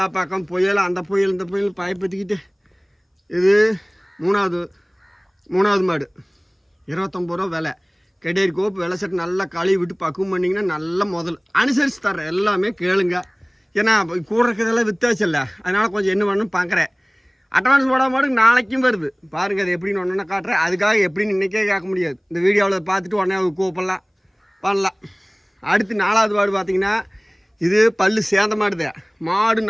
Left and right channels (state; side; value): identical; both; correlation 1.00